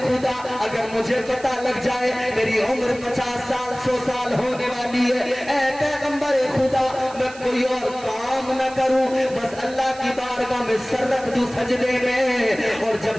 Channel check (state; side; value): noise; right; hiss, 19 dB below the sound